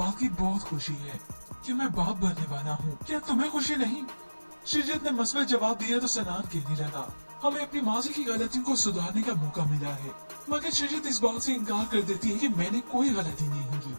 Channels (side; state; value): both; inverted; correlation -1.00